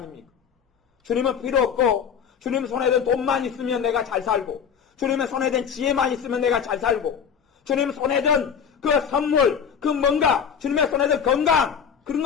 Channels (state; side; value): quieter; right; 7.3 dB